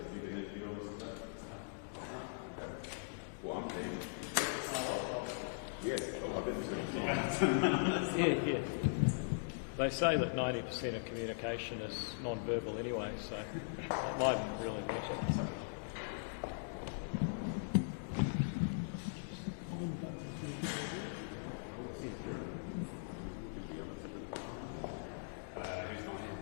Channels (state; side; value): silent; right; digital silence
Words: Yeah. They say that 90% of communication is non-verbal anyway, so that mightn't really matter. Yeah.